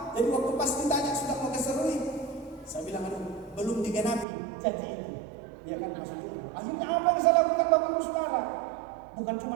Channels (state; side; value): drops out; left; at 4.2 s